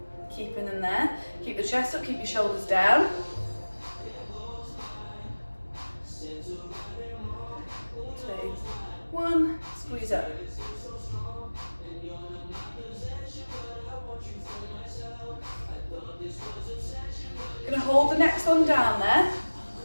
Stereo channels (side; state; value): both; inverted; correlation -1.00